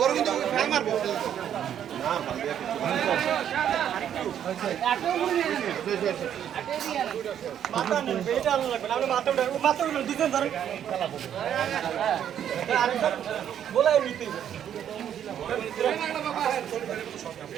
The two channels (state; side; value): quieter; left; 9.7 dB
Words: কিন্তু ফেল মারবো। মাথা নেই এটা আলো লাগবে না মাথা উঠে দুজন ধরে আরেকজন বলাই নিতে